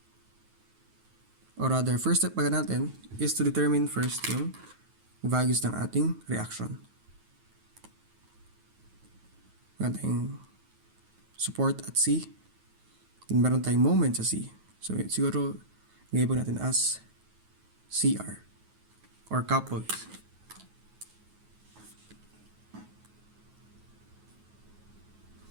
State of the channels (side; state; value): left; late; 9.3 ms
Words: Or rather, first step pala natin is to determine first yung values ng ating reaction. Meron tayong support at C. Meron tayong moment sa C. So, siguro, nilabel natin as CR or coupled.